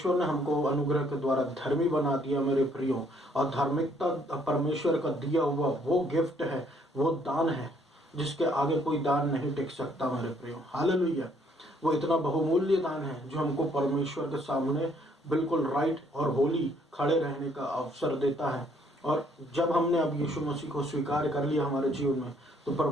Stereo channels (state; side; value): normal; both; correlation 0.66